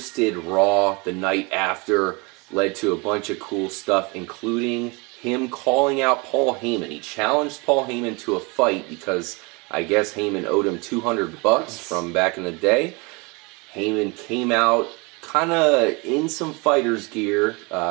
Raw the night after, led to a bunch of cool stuff, including him calling out Paul Heyman. He challenged Paul Heyman to a fight because I guess Heyman owed him $200 from back in the day. Heyman came out kind of in some fighter's gear,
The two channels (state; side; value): quieter; left; 28.2 dB